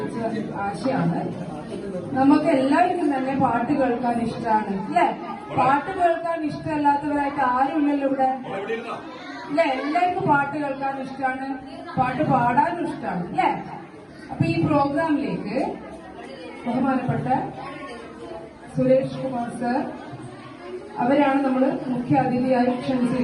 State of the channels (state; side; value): identical; both; correlation 1.00